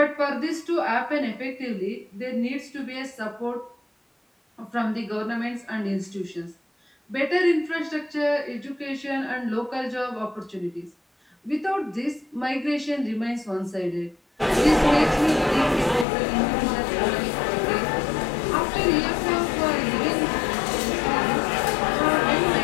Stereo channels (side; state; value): right; drops out; at 16.1 s